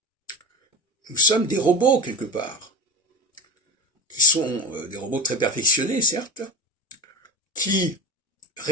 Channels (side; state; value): both; normal; correlation 0.27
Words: nous sommes des robots quelque part, qui sont des robots très perfectionnés, certes, qui